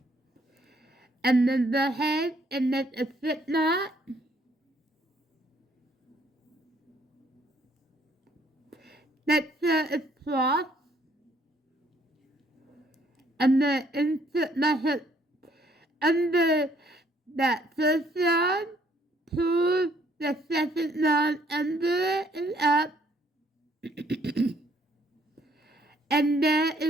and then go ahead and make a slip knot. Make sure it's crossed, I'm going to insert my hook under that first yarn, pull the second yarn under it and up, and there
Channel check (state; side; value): normal; both; correlation 0.66